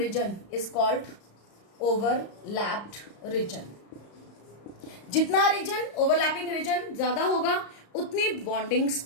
is called overlapped region. जितना रीजन ओवरलैपिंग रीजन ज्यादा होगा उतनी बॉन्डिंग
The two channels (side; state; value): right; late; 34 ms